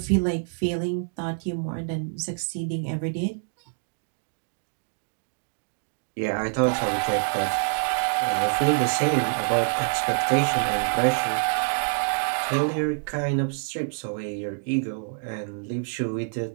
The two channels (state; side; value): silent; left; digital silence